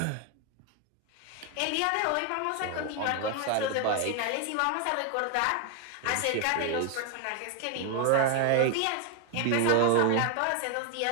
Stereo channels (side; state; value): both; different; correlation 0.01